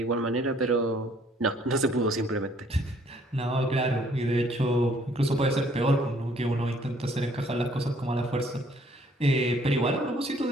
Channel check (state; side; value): normal; both; correlation 0.62